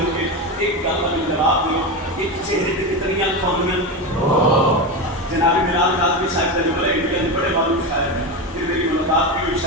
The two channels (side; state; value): both; normal; correlation 0.17